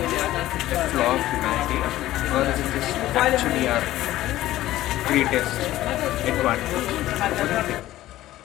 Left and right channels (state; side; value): quieter; right; 15.0 dB